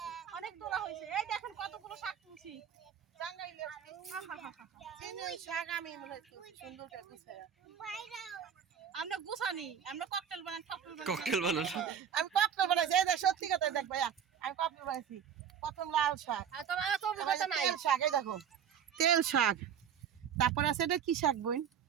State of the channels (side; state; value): left; quieter; 8.2 dB